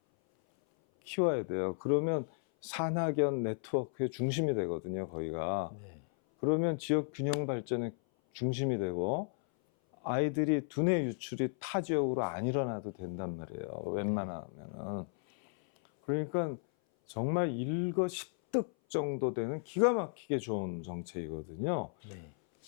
키워야 돼요. 그러면 산학연 네트워크의 중심이 되거든요, 거기가. 네. 그러면 지역 균형 발전의 중심이 되고 아이들이 두뇌 유출이 타 지역으로 안 일어나도 된단 말이에요. 웬만하면은. 그러니까 정말 일거십득 정도 되는 기가 막히게 좋은 정책이거든요. 네.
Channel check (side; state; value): right; silent; 55 dB below the other